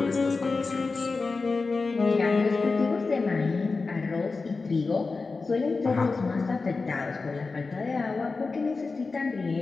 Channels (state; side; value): quieter; right; 4.1 dB